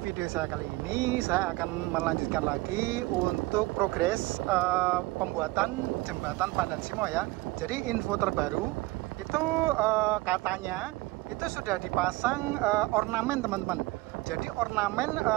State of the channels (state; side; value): quieter; left; 20.8 dB